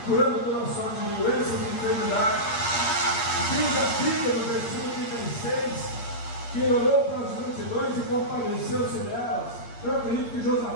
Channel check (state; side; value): late; right; 8.6 ms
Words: curando toda sorte de doenças e enfermidades. Diz a Bíblia no versículo 36, que ele olhou para as multidões e compadeceu-se delas. Eu acredito que